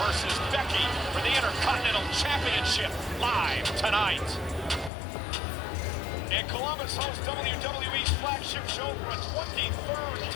versus Becky for the Intercontinental Championship live tonight. And Columbus hosts WWE's flagship show for a 23rd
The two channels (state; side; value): drops out; right; at 4.9 s